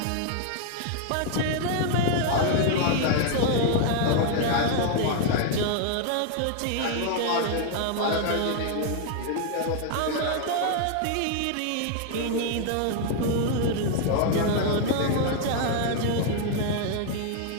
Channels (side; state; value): both; different; correlation 0.00